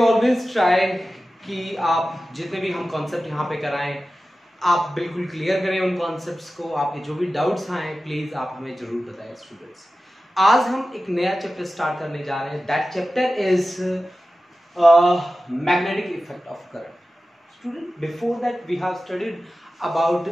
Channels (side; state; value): both; normal; correlation 0.95